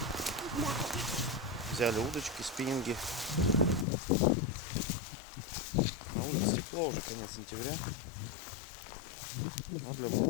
Да. Взяли удочки, спиннинги. На улице тепло, уже конец сентября. Но для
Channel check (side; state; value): right; drops out; at 3.9 s